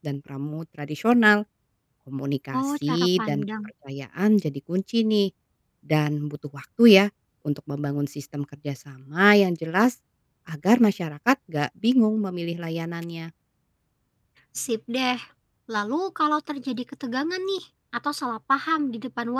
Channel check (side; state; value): both; identical; correlation 1.00